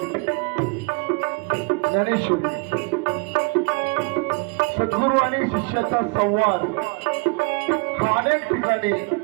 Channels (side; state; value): left; quieter; 32.2 dB